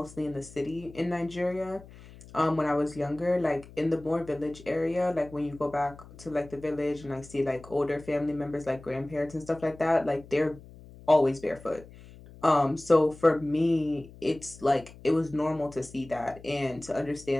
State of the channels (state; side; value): noise; left; hum, 19 dB below the sound